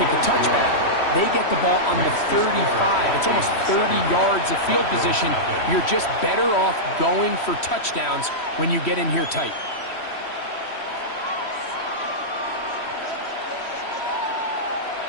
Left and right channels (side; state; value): right; late; 3.1 ms